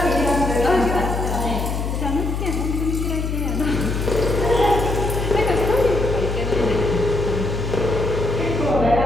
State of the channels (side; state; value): left; noise; hum, 3 dB below the sound